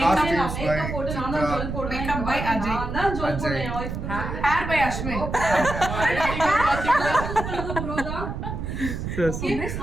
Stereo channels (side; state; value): right; noise; rumble, 5 dB below the sound